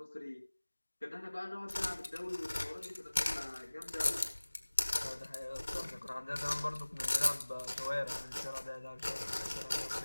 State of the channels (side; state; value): both; inverted; correlation -1.00